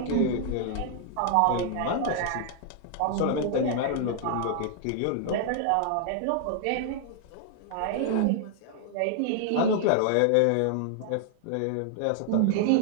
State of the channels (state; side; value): different; both; correlation 0.00